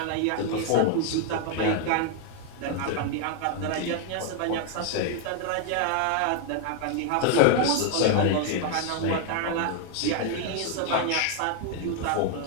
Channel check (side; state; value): both; different; correlation 0.00